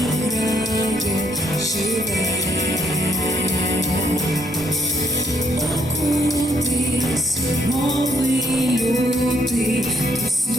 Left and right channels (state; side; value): normal; both; correlation 0.69